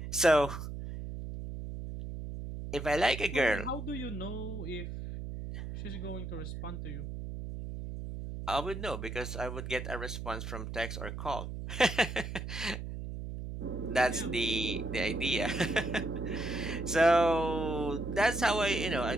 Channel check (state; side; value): noise; right; hum, 7 dB below the sound